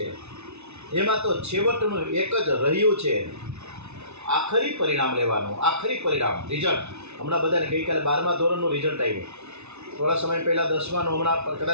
એમાં તો છેવટનું એક જ રહ્યું છે, આખરી પરિણામ લેવાનું. આખરી પરિણામ રિઝલ્ટ. હમણાં બધાને ગઈકાલે 12મા ધોરણનું રિઝલ્ટ આવ્યું. થોડા સમય પહેલાં 10માનું, હમણાં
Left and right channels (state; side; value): late; left; 0.81 ms